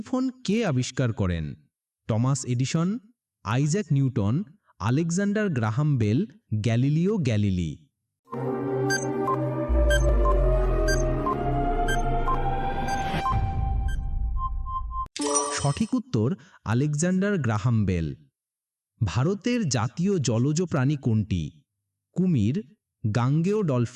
কে আবিষ্কার করেন? Thomas Edison, Isaac Newton, Alexander Graham Bell, Galileo Galilei. সঠিক উত্তর আলেকজান্ডার গ্রাহাম বেল। ভারতের জাতীয় জলজ প্রাণী কোনটি? কুমির, গাঙ্গেয়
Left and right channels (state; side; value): identical; both; correlation 1.00